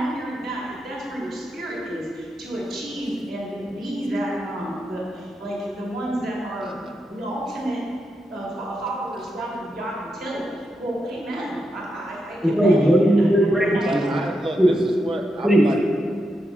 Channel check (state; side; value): normal; both; correlation 0.85